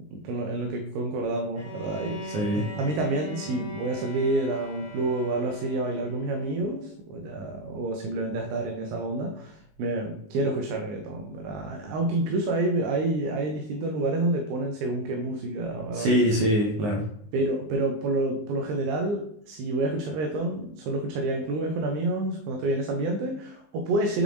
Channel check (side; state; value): left; late; 19 ms